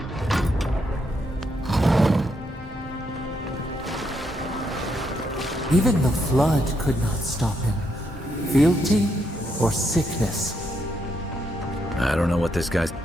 Even the flood could not stop him. Fealty or sickness? I don't know what this guy's...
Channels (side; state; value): both; normal; correlation 0.78